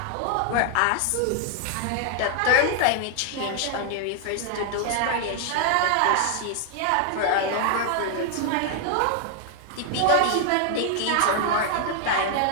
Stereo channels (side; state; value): both; different; correlation 0.00